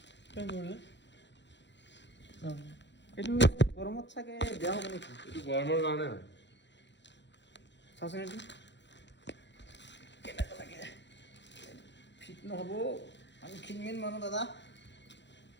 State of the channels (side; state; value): right; late; 0.52 ms